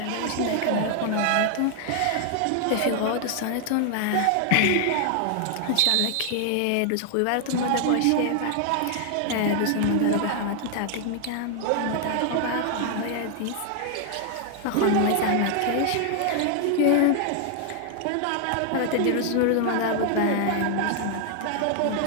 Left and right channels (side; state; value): both; different; correlation 0.00